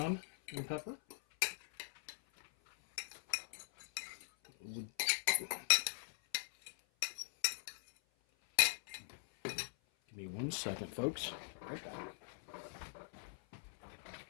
and pepper. Give me 1 second, folks. Right back.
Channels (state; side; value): silent; right; 50 dB below the other